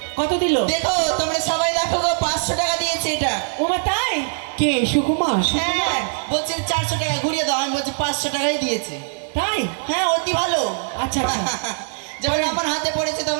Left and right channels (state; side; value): silent; left; 65 dB below the other